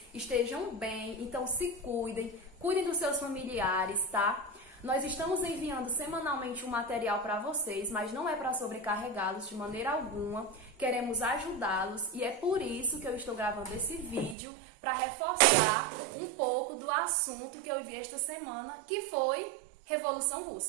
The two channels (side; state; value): left; drops out; at 14.4 s